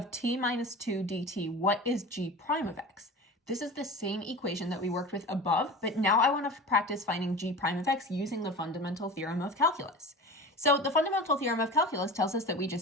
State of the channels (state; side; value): normal; both; correlation 0.33